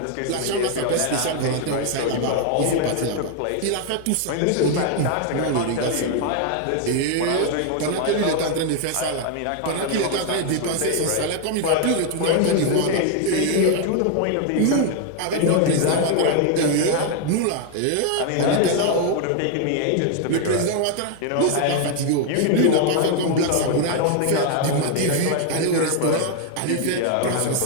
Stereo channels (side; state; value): both; different; correlation 0.00